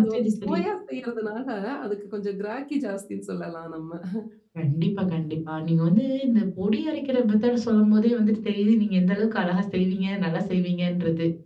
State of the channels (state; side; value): identical; both; correlation 1.00